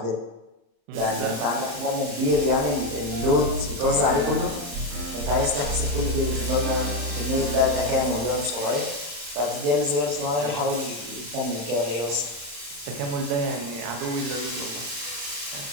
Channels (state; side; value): late; left; 35 ms